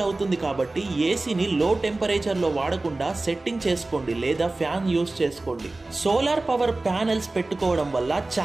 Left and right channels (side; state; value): left; quieter; 3.0 dB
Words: అవుతుంది కాబట్టి ఏసీని లో టెంపరేచర్ లో వాడకుండా సెట్టింగ్ చేసుకోండి లేదా ఫ్యాన్ యూజ్ చేసుకోండి. సోలార్ పవర్ ప్యానెల్స్ పెట్టుకోవడం వల్ల